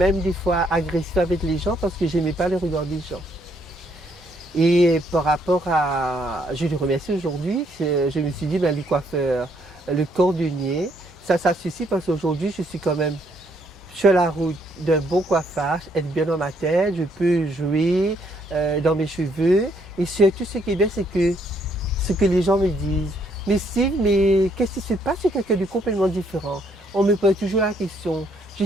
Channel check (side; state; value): both; normal; correlation 0.70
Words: des fois agressive avec les gens parce que j'aimais pas le regard des gens. Et par rapport à, je le remercie aujourd'hui, je me suis dit, ben, le coiffeur, le cordonnier, ça suffit parce qu'aujourd'hui, je suis quand même sur la route d'un bon coiffage, être bien dans ma tête, je peux jouer dans mes cheveux. Et surtout, ce qui est bien, c'est que ce que les gens me disent. Mais Steve, mais qu'est-ce qui se passe? C'est quelqu'un de complètement différent. On me pose toujours la question, je